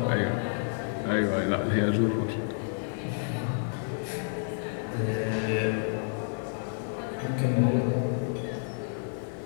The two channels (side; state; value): right; silent; digital silence